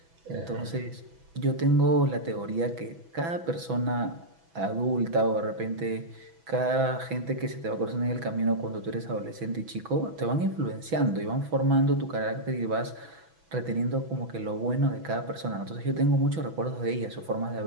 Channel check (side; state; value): left; late; 6.1 ms